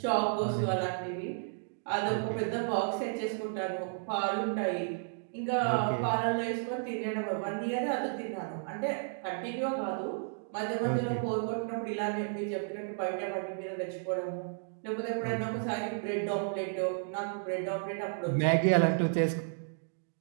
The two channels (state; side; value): silent; left; digital silence